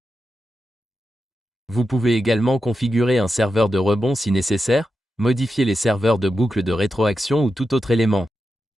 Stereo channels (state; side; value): normal; both; correlation 0.89